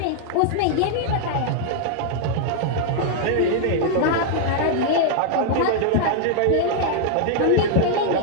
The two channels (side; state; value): both; different; correlation -0.01